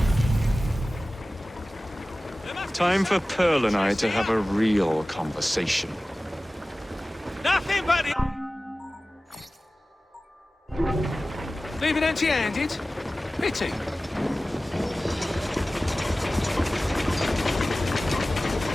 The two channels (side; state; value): both; normal; correlation 0.97